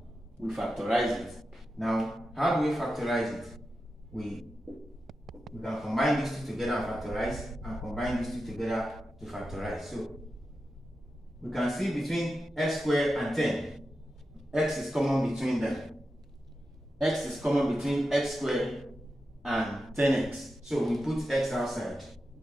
We factorize it. Now, how do we factorize it? We can combine these two together and factorize, and combine these two together to factorize. So, we can see between x squared and 10, x is common between them. X is common between x squared and 10x. So we put x outside.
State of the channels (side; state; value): both; normal; correlation 0.90